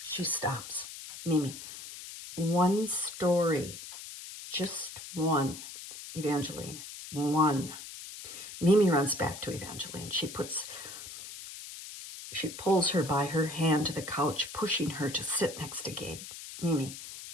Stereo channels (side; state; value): left; noise; hiss, 12 dB below the sound